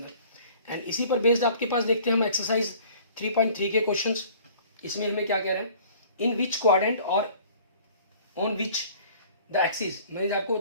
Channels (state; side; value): inverted; both; correlation -0.50